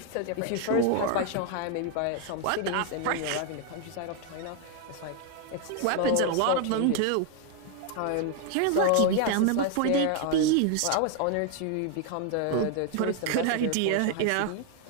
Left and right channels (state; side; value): different; both; correlation 0.01